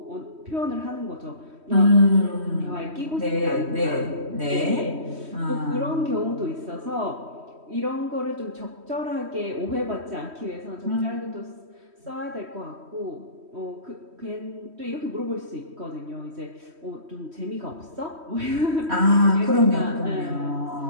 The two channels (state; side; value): late; left; 3.1 ms